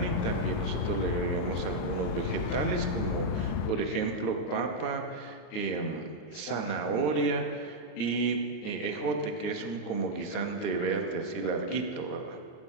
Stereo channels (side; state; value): right; late; 39 ms